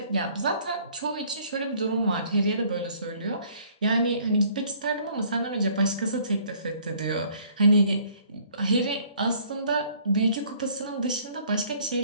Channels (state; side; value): inverted; both; correlation -0.59